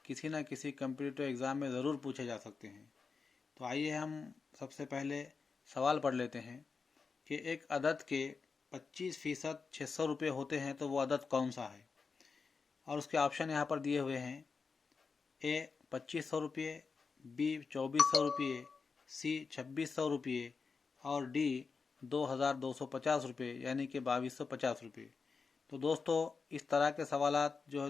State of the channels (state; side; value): quieter; right; 4.9 dB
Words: किसी न किसी कम्पिटिटिव एग्ज़ाम में ज़रूर पूछे जा सकते हैं। तो आइए हम सबसे पहले सवाल पढ़ लेते हैं कि एक अदद के 25% 600 रुपये होते हैं तो वो अदद कौन सा है। और उसके ऑप्शन यहाँ पर दिए हुए हैं। ए 2500 रुपये, बी 2400 रुपये, सी 2600 रुपये और डी 2250 रुपये यानी कि 2250 रुपये। तो दोस्तों, इस तरह के सवालात जो